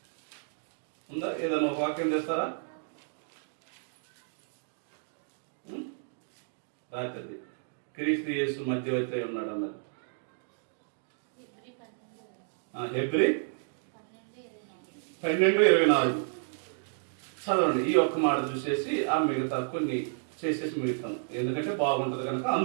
ఉందా? ఏదైనా ఒక వాక్యం చేస్తారా? రాత్రి క్రీస్తు యేసు మధ్యవర్తి ఉన్నాడు అన్నది. హెబ్రీ 12:24 చదవండి. ఈ ఒక్క మాట చూసేసి ఆ మిగతా కొన్ని చేసేసి మిగతాం, ఎందుకంటే బాగుంటది కనుక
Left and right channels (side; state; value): left; silent; digital silence